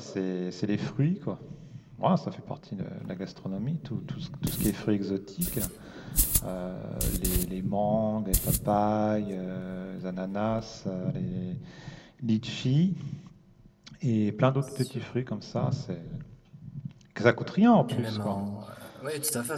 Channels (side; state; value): both; identical; correlation 1.00